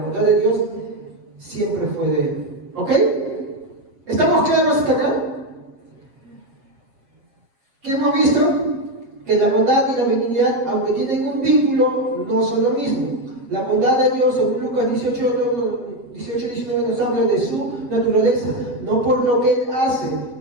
de Dios siempre fue de Él. ¿Ok? ¿Estamos claros hasta acá? ¿Qué hemos visto? Que la bondad y la benignidad, aunque tienen un vínculo, no son lo mismo. La bondad de Dios, según Lucas 18:19, nos habla de su naturaleza, no por lo que Él hace.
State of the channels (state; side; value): late; left; 7.5 ms